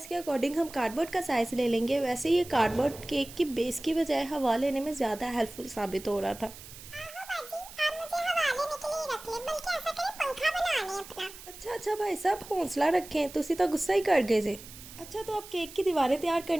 के अकॉर्डिंग हम कार्डबोर्ड का साइज़ ले लेंगे। वैसे ये कार्डबोर्ड केक की बेस की बजाय हवा लेने में ज़्यादा हेल्पफुल साबित हो रहा था। अच्छा भाई साहब, हौसला रखें, तुसी तो गुस्सा ही कर गए जे। अच्छा, तो अब केक की दीवारें तैयार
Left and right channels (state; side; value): noise; right; hiss, 16 dB below the sound